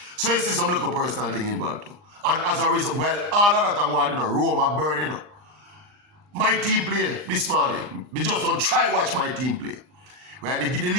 So you see some little personal thing involved too. And as a result, well, all of that I'm going, Rome are burning. My team play this morning. We just don't try watch my team play. Right? The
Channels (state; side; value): late; left; 39 ms